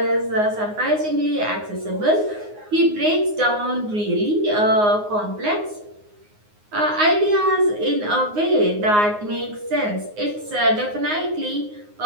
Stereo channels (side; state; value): left; late; 9.6 ms